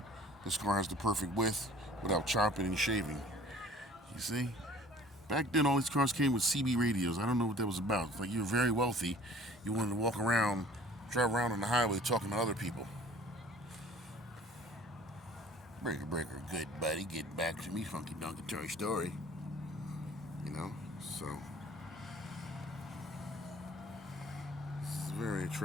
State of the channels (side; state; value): both; normal; correlation 0.50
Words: This car has the perfect width without chopping and shaving. You see? Back then, all these cars came with CB radios. I don't know what that was about. It's like you were very wealthy. You wanted to walk around, drive around on the highway talking to other people. Breaker, breaker, good buddy. Get back to me, funky donkey Toy Story. You know? So, this is very